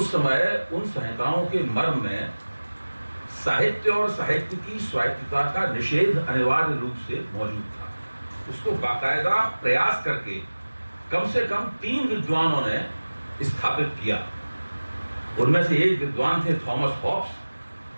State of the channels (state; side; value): inverted; both; correlation -1.00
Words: समय उन संहिताओं के मर्म में साहित्य और साहित्य की स्वायत्तता का निषेध अनिवार्य रूप से मौजूद था। उसको बाकायदा प्रयास करके कम से कम 3 विद्वानों ने स्थापित किया। उनमें से एक विद्वान थे थॉमस हॉब्स,